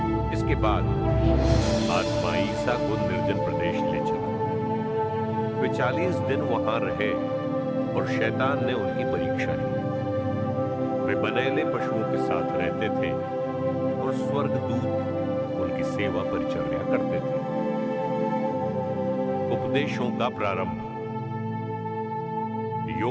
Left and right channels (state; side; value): identical; both; correlation 1.00